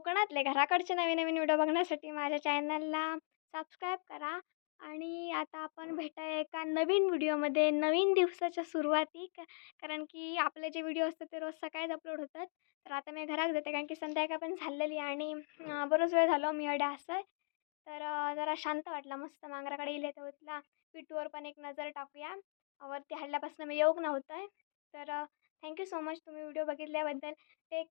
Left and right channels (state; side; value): silent; right; digital silence